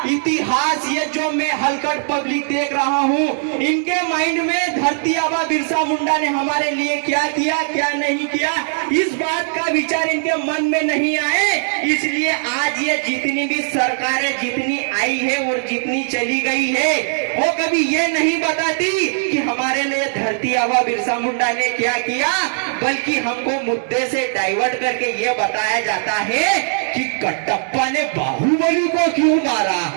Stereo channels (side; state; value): left; silent; digital silence